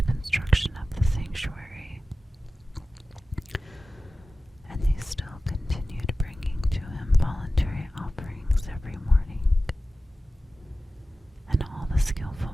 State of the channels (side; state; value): both; normal; correlation 0.95